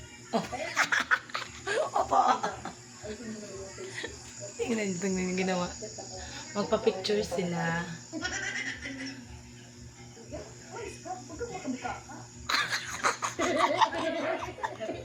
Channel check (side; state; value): both; identical; correlation 1.00